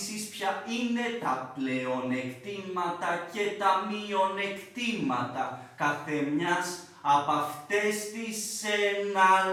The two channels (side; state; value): both; identical; correlation 1.00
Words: ποια είναι τα πλεονεκτήματα και τα μειονεκτήματα καθεμιάς από αυτές τις